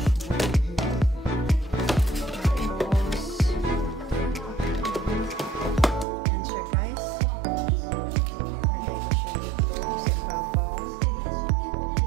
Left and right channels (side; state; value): left; drops out; at 6.1 s